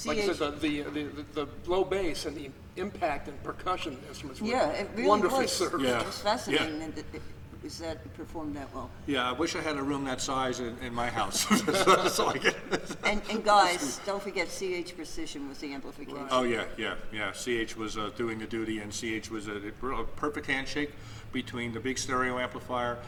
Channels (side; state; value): both; identical; correlation 1.00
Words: like I CH said, the low bass and the impact and percussion instruments were Yeah, it really wonderfully was. served. Yeah. It was fascinating that it performed that well. Yeah, I wish I had a room that size in my house. So I get. And guys, don't forget CH Precision was the amplification. Oh yeah. CH was doing the duty, and CH was a perfect handshake between the big stereo amplifier